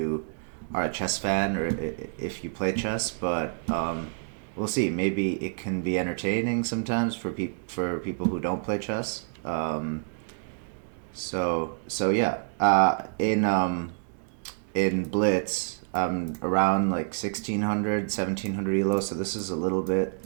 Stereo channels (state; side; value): silent; left; digital silence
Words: are a chess fan or if you play chess, but we'll see. Maybe it can be entertaining sometimes for people who don't play chess. So yeah. In Blitz, around like 1600, 1700 ELO. So this is a little bit